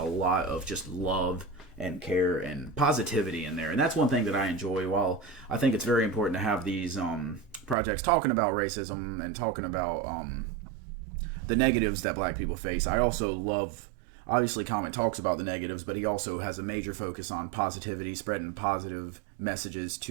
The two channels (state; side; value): drops out; left; at 7.8 s